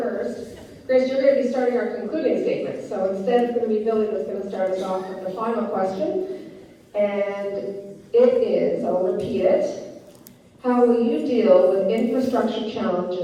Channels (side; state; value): both; identical; correlation 1.00